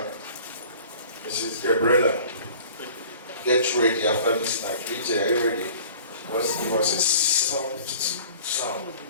Mrs. Gabriela, get ready after the snack. DJ, are you ready? Let's give us a soft sound.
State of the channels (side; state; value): both; inverted; correlation -0.48